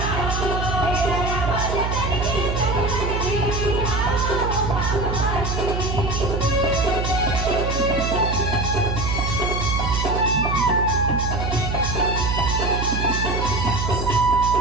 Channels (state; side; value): noise; right; hum, 2 dB below the sound